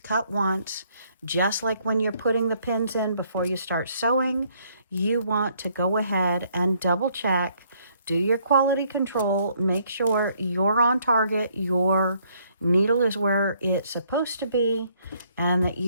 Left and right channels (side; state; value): both; inverted; correlation -0.67